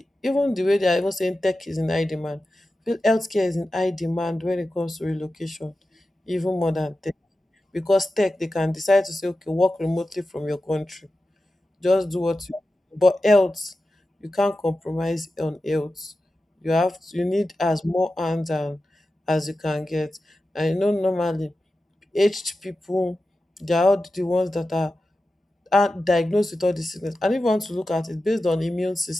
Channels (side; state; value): both; normal; correlation 0.93